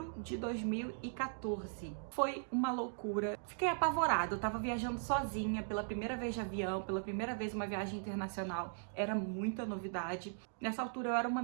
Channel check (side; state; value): left; silent; digital silence